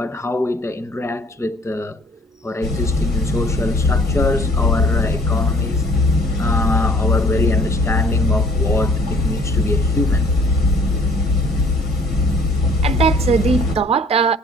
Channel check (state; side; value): normal; both; correlation 0.56